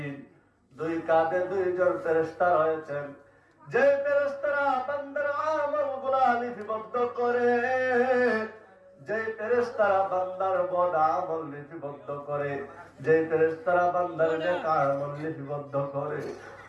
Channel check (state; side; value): identical; both; correlation 1.00